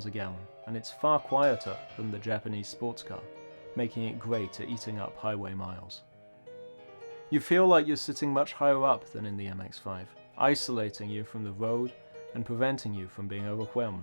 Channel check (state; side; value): inverted; both; correlation -1.00